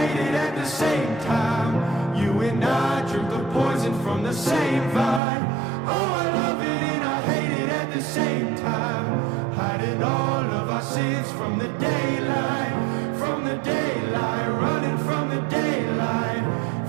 hate it at the same time. You and I drink the poison from the same vine. Oh, I love it and I hate it at the same time. Hiding all of our sins from the daylight, from the daylight, running from the daylight,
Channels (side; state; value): left; drops out; at 5.2 s